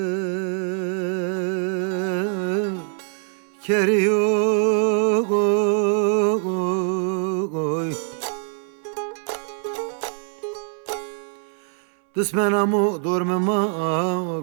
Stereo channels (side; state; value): left; silent; digital silence